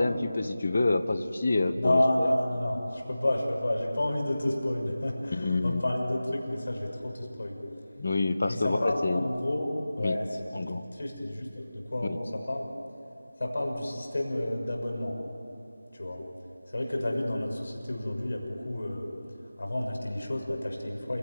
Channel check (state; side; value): inverted; both; correlation -0.96